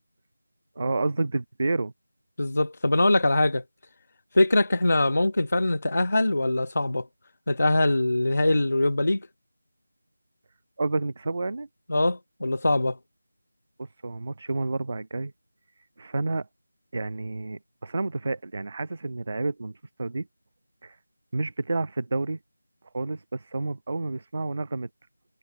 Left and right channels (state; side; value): inverted; both; correlation -0.96